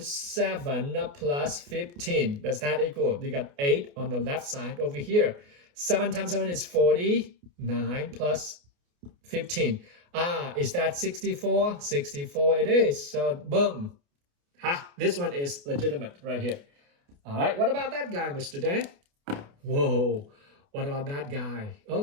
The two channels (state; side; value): late; left; 28 ms